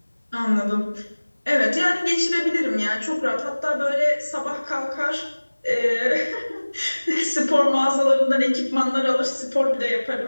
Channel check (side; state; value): both; inverted; correlation -1.00